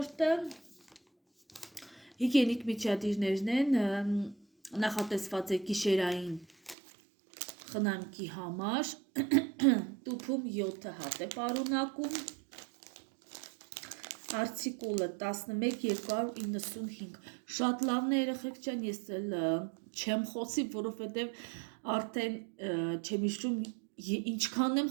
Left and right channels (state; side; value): drops out; left; at 6.8 s